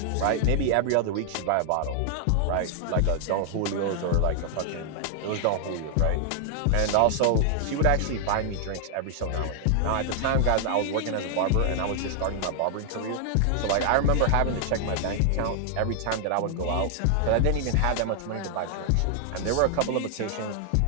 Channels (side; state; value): both; different; correlation 0.00